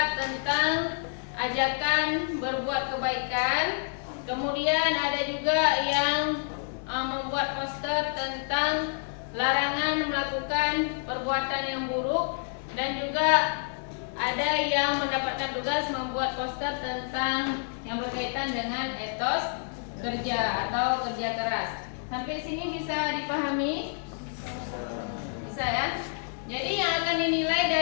tentang ajakan berbuat kebaikan. Kemudian ada juga yang membuat poster tentang larangan melakukan perbuatan yang buruk, dan juga ada yang mendapatkan tugas membuat poster tentang yang berkaitan dengan etos kerja atau kerja keras. Sampai sini bisa dipahami? Bisa ya? Jadi yang akan dinilai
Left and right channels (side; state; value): right; silent; digital silence